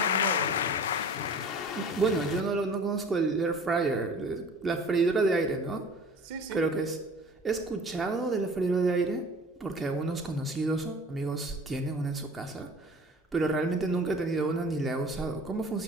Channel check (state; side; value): normal; both; correlation 0.44